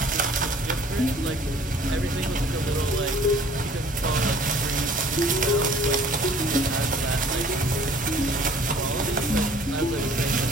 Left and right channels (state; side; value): normal; both; correlation 0.53